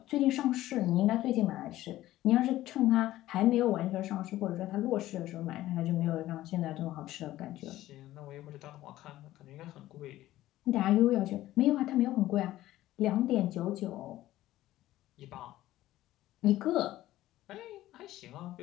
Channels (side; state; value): right; quieter; 15.1 dB